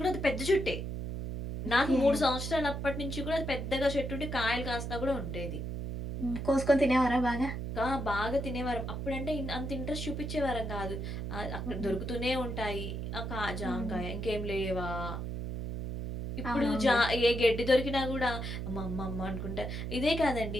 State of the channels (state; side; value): noise; right; hum, 4 dB below the sound